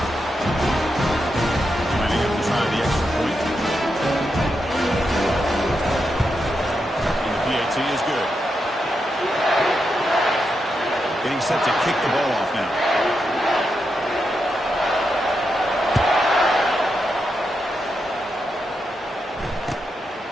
Lining up to try the extra point. And the PAT is good. Getting set to kick the ball off now.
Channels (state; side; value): normal; both; correlation 0.85